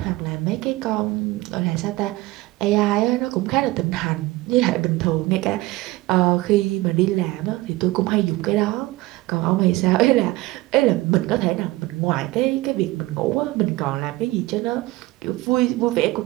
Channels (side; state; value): left; quieter; 19.5 dB